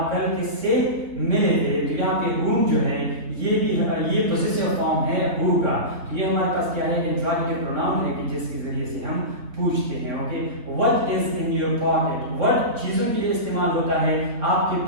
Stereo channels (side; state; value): left; late; 3.7 ms